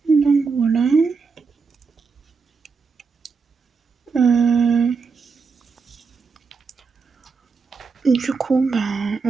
Donc voilà. Du coup, ben,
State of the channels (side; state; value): left; quieter; 5.0 dB